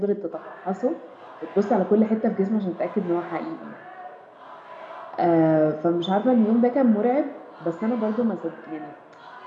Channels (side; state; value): both; identical; correlation 1.00